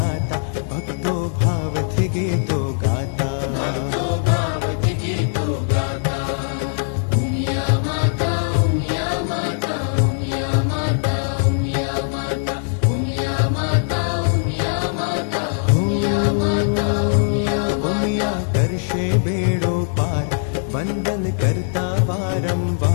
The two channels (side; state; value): right; silent; 58 dB below the other